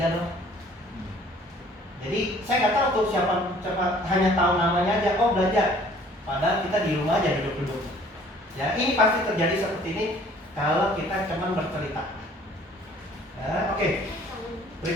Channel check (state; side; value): normal; both; correlation 0.55